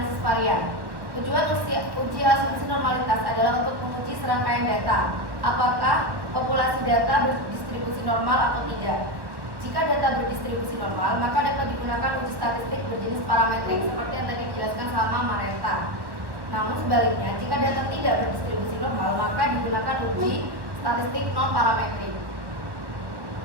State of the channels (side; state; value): left; late; 1.1 ms